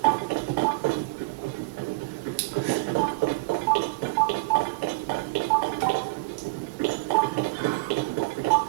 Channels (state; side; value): quieter; left; 25.4 dB